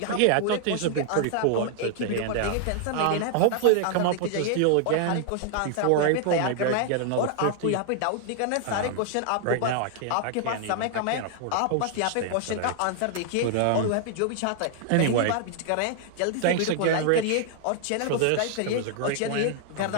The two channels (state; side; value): different; both; correlation 0.00